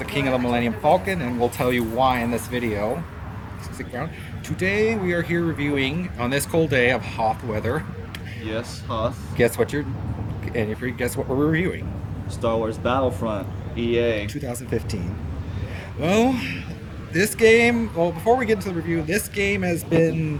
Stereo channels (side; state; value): both; identical; correlation 1.00